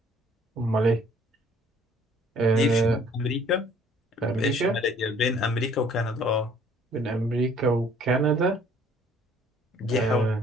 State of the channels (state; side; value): normal; both; correlation 0.58